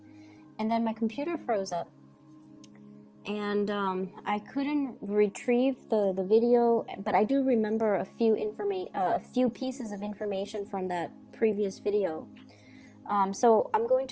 And then my computer froze up, and I couldn't retrieve the video, but I do remember a few pieces of information from that previous video. So I'm going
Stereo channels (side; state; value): both; identical; correlation 1.00